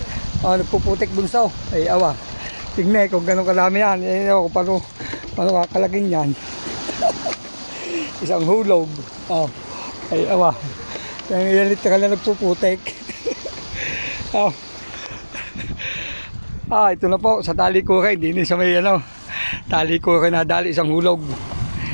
Nagpuputik bunso. Ay, awa. Tingnan kung gano'ng kalami yan. Ewan ko paano kakalagin yan. Isang hulog. Ay, awa. Kaya ilan literal na nagpuputik. Ito na po. Sa tali ko kayo. Hindi sa may tali ko kayo nadali. Isang hulog.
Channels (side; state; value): both; inverted; correlation -1.00